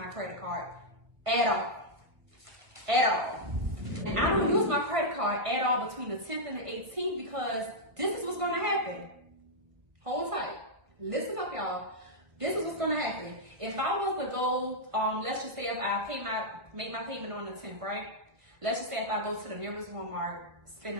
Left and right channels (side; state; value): left; late; 1.8 ms